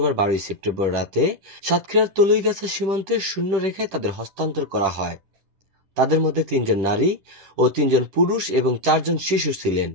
12 সেপ্টেম্বর রাতে সাতক্ষীরার তলুইগাছা সীমান্তের শূন্য রেখায় তাদের হস্তান্তর করা হয়। তাদের মধ্যে 3 জন নারী ও 3 জন পুরুষ এবং 4 জন শিশু ছিলেন।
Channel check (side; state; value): left; late; 10 ms